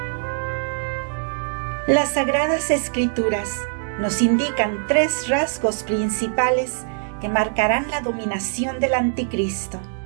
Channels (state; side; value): silent; left; digital silence